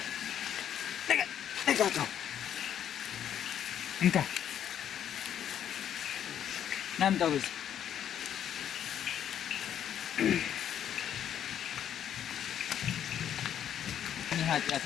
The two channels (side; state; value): right; quieter; 9.8 dB